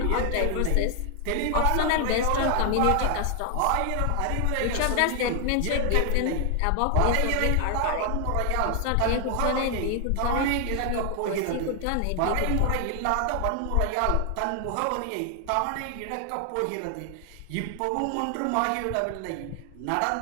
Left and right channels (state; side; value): different; both; correlation 0.00